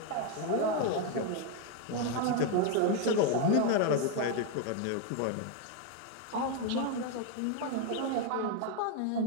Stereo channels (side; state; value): both; different; correlation 0.02